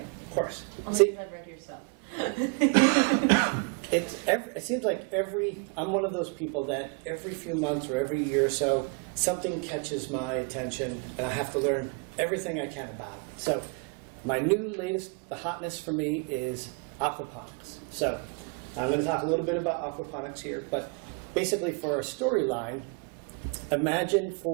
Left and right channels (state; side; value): quieter; left; 36.1 dB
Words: Of course. Only if I've read yourself. It seems like I'm one of those people that every few months or every year or so, something catches my attention, and I have to learn everything I can about it. So my the hotness for me is aquaponics. So I'm going to talk a little bit about aquaponics here, but basically for a storyline, imagine